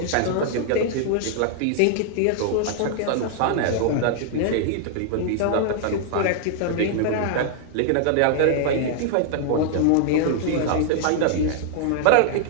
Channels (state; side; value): different; both; correlation -0.01